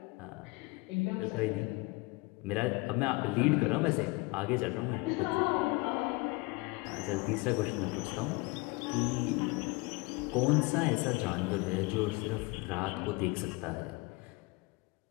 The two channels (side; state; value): right; quieter; 24.5 dB